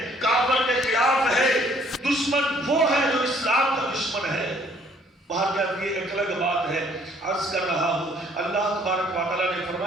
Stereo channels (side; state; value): both; normal; correlation 0.61